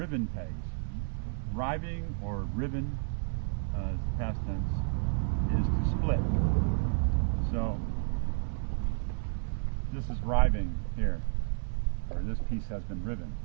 pegs. Riving or riven, as the past tense, is to split. So this is riving here, or this piece has been riven.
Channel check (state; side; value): silent; left; 57 dB below the other